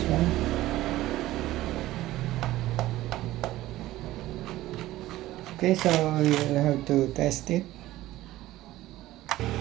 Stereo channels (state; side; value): quieter; left; 16.0 dB